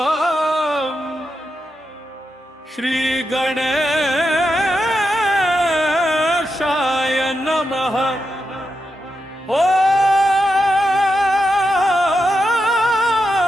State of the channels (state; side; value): normal; both; correlation 0.86